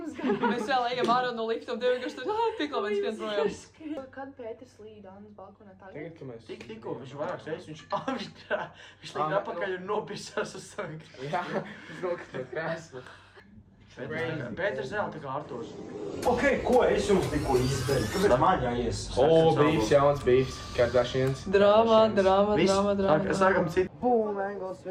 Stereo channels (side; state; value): both; identical; correlation 1.00